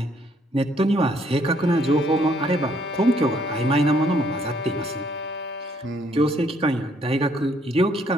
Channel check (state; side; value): normal; both; correlation 0.67